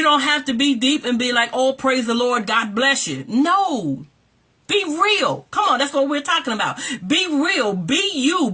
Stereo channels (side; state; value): both; identical; correlation 1.00